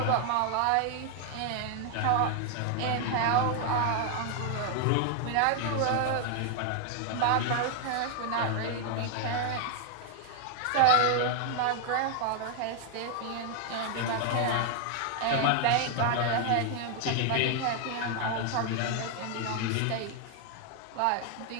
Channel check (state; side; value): different; both; correlation 0.00